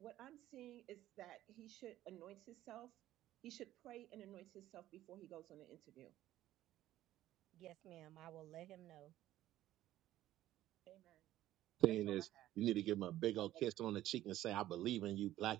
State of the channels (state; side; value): quieter; left; 14.0 dB